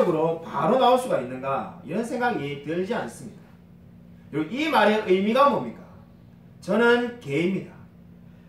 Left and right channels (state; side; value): identical; both; correlation 1.00